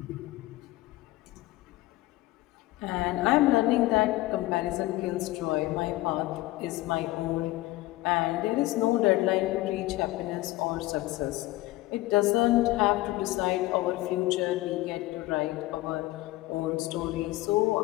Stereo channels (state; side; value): quieter; right; 18.1 dB